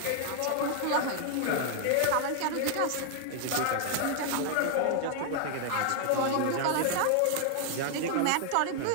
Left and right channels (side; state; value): both; different; correlation 0.00